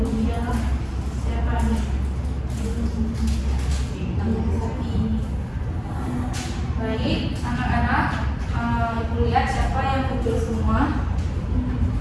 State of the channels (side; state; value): both; identical; correlation 1.00